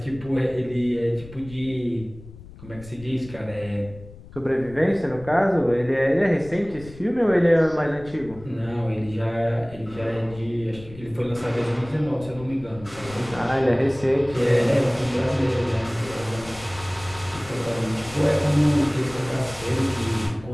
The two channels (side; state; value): left; noise; rumble, 18 dB below the sound